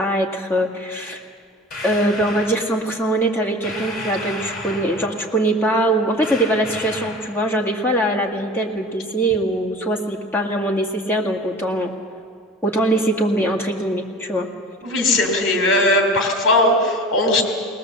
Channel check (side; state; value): both; normal; correlation 0.38